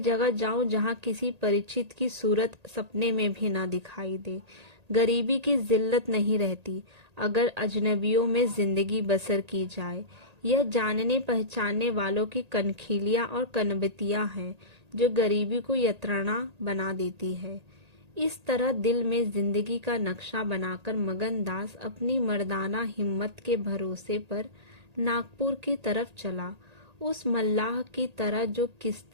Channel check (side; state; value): left; late; 1.8 ms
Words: जाऊं जहाँ किसी परिचित की सूरत सपने में भी ना दिखाई दे। गरीबी की जिल्लत नहीं रहती अगर अजनबियों में जिंदगी बसर की जाए। यह जानने पहचानने वालों की कनखिलियां और कनबतियां हैं जो गरीबी को यत्राणा बना देती है। इस तरह दिल में जिंदगी का नक्शा बनाकर मगनदास अपनी मर्दाना हिम्मत के भरोसे पर नागपुर की तरफ चला, उस मल्लाह की तरह जो